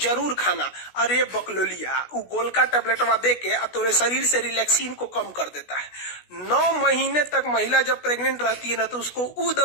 खाना। अरे बकलोलिया, वो गोल का टैबलेटवा दे के तोरे शरीर से रिलैक्सिन को कम कर देता है। 9 महीने तक महिला जब प्रेग्नेंट रहती है ना तो उसको वो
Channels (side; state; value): right; late; 16 ms